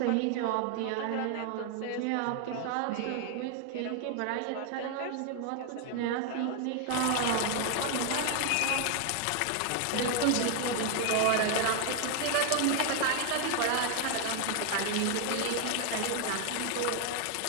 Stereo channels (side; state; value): both; different; correlation 0.01